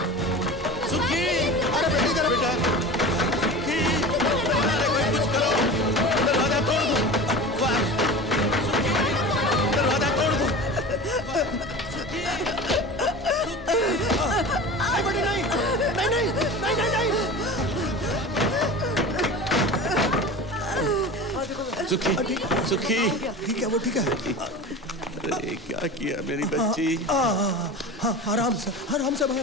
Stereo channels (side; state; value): both; normal; correlation 0.32